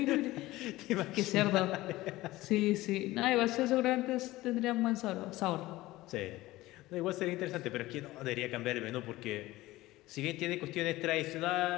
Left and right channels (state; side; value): quieter; right; 17.9 dB